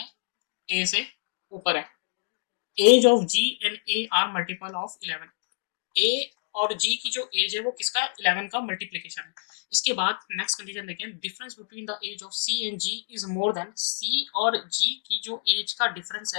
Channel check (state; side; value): silent; right; digital silence